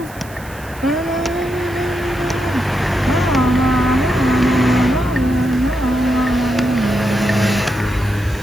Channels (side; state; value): right; noise; hiss, 21 dB below the sound